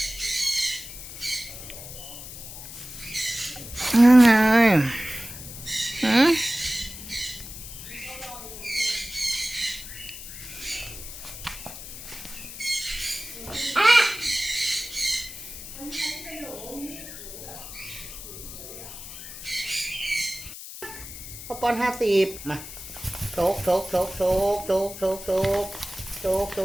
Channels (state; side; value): noise; left; hiss, 12 dB below the sound